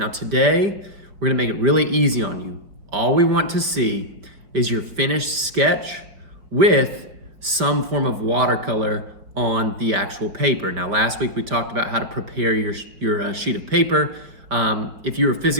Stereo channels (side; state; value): left; late; 4.8 ms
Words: today, we're going to make it really easy on you. All we want to see is your finished sketch with some form of watercolor on the actual paper. Now last week we talked about how to prepare your sheet of paper. If you were